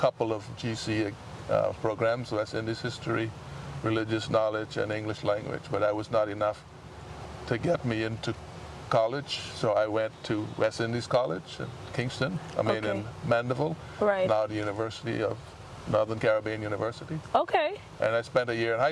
of GC programs, West Indies history, religious knowledge, and English language, but that was not enough to get me into college. So I went to West Indies College in Kingston, in Mandeville, now the University of Northern Caribbean University. Okay. And I spent a year in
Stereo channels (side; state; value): both; identical; correlation 1.00